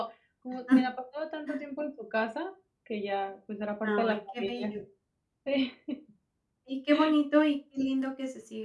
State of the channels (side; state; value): both; identical; correlation 1.00